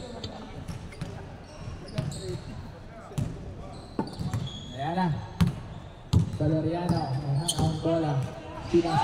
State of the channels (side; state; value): both; identical; correlation 1.00